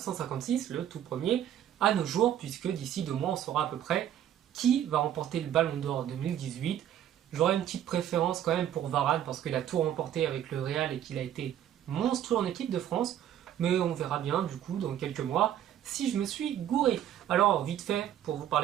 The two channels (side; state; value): left; quieter; 10.8 dB